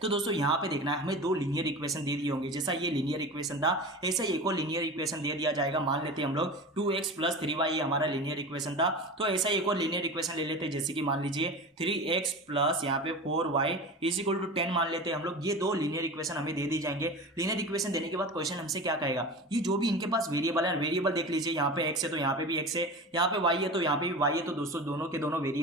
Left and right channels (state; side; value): normal; both; correlation 0.31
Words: तो दोस्तों यहाँ पे देखना है हमें 2 लीनियर इक्वेशन दे दिए होंगे, जैसा ये लीनियर इक्वेशन था ऐसा ही एक और लीनियर इक्वेशन दे दिया जाएगा। मान लेते हैं हम लोग 2x प्लस 3y ये हमारा लीनियर इक्वेशन था, तो ऐसा ही एक और लीनियर इक्वेशन ले लेते हैं, जैसे कि मान लीजिए 3x प्लस यहाँ पे 4y इज इक्वल टू 10 मान लेते हैं हम लोग। ये 2 लीनियर इक्वेशन हमें दे दी जाएंगे। लीनियर इक्वेशन देने के बाद क्वेश्चन हमसे क्या कहेगा, ये जो भी इनके पास वेरिएबल है, वेरिएबल देख लीजिए, यहाँ पे x है तो यहाँ पे भी x है, यहाँ पे y है तो यहाँ पे भी y है। तो दोस्तों दोनों के दोनों